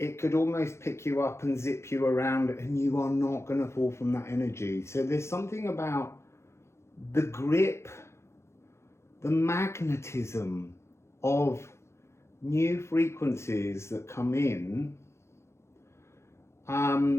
could almost pick you up and zip you around, and you are not going to fall from that energy. So there's something about the grip, the magnetism of new frequencies that come in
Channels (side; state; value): right; late; 0.13 ms